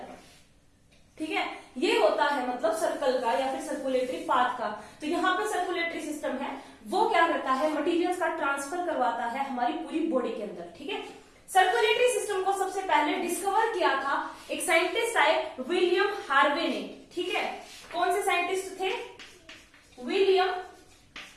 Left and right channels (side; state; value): both; identical; correlation 1.00